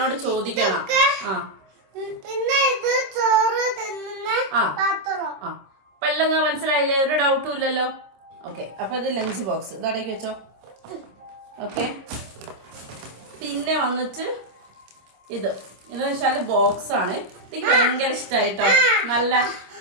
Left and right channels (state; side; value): late; left; 26 ms